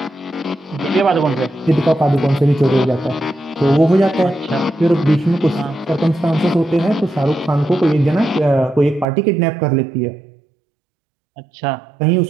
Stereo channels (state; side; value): drops out; left; at 9.1 s